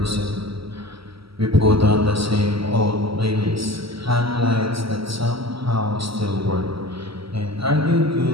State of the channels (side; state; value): left; late; 0.75 ms